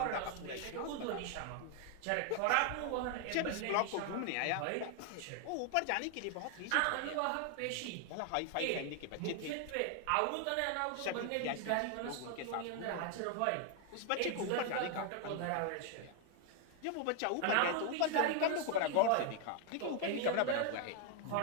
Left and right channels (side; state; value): both; different; correlation 0.00